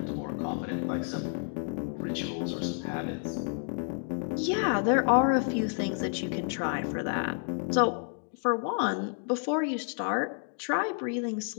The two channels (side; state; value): right; silent; 58 dB below the other